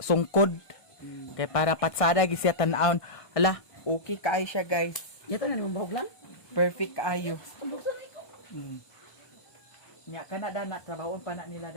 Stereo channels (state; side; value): late; right; 1.6 ms